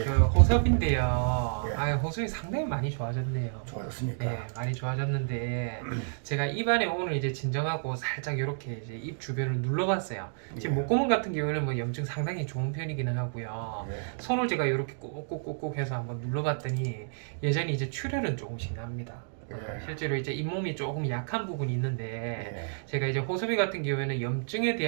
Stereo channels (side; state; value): left; silent; digital silence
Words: 그 호섭인데요. 예. 호섭이 상당히 많이 좋아졌네요. 좋아졌습니까? 예, 많이 좋아졌는데 제가 입안에 오늘 이제 진정하고 살짝 이렇게 이제 입 주변을 눌러봤어요. 지금 예. 목구멍 같은 경우에는 뭐 염증 상당히 좋은 편이기는 하고요. 예. 손을 제가 이렇게 꾹꾹꾹꾹 해서 한번 눌러봤더니 여전히 이제 출혈은 조금씩 납니다. 예. 실제로 이제 잇몸이 조금 약한 부분이 있는데 예. 제가 이제 호섭이 같은 경우에는 염증에